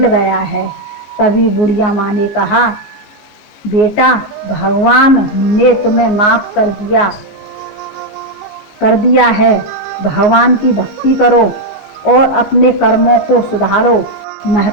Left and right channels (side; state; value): right; late; 14 ms